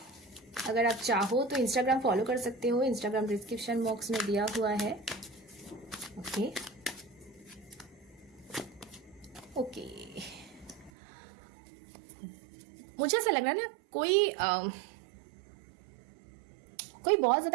अगर आप चाहो तो इंस्टाग्राम फॉलो कर सकते हो, इंस्टाग्राम डिस्क्रिप्शन बॉक्स में दिया हुआ है। ओके ओके, मुझे ऐसा लग रहा है ना कोई बहुत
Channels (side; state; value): left; drops out; at 10.9 s